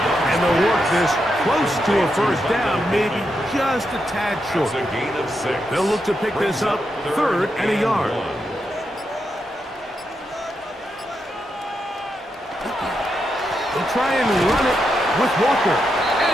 And they'll work this close to a first down, maybe just a tad short. They'll look to pick this up 3rd and a yard. They'll try and run it with Walker.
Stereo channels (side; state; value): both; normal; correlation 0.84